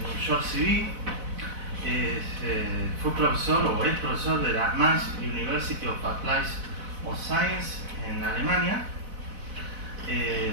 un short CV, fue profesor o es profesor de la Mainz University of Applied Science en Alemania.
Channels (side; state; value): left; late; 4.0 ms